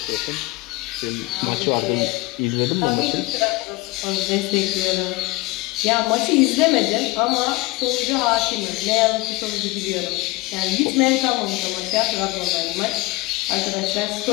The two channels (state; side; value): quieter; right; 21.7 dB